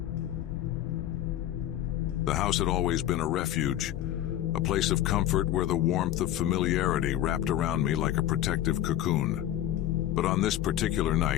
The house had always been a refuge, a place of comfort where the warmth of familiarity wrapped around me like a protective cocoon. But on this particular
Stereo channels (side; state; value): right; quieter; 12.5 dB